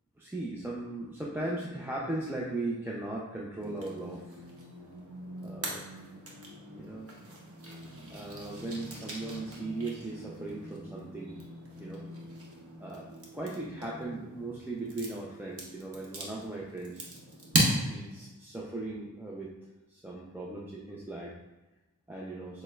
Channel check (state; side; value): normal; both; correlation 0.50